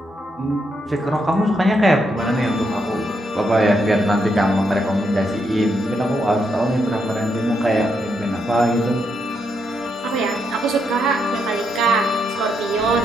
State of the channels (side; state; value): both; normal; correlation 0.79